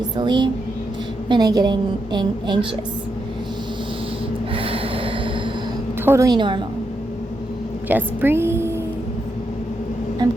when I get anxious. Totally normal. Just breathe. I'm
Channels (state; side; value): normal; both; correlation 0.83